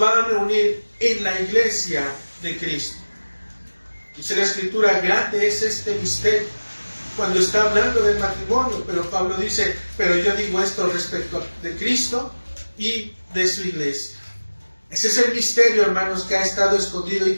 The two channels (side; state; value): both; inverted; correlation -1.00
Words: a reunir en la iglesia de Cristo. Dice la Escritura, grande es este misterio, cuando está hablando del matrimonio, pero Pablo dice, pero yo digo esto respecto de Cristo y de su iglesia. Ese es el misterio, hermanos, que ha estado escondido y